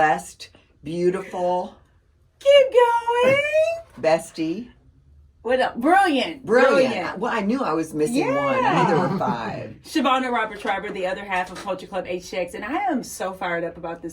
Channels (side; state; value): both; identical; correlation 1.00